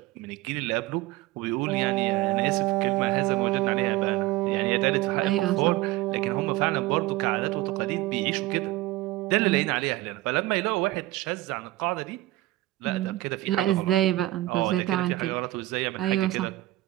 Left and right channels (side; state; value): left; quieter; 17.6 dB